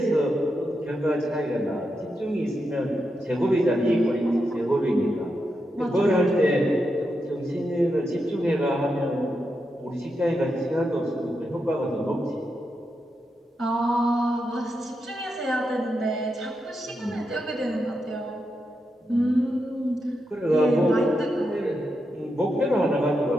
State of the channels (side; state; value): both; normal; correlation 0.86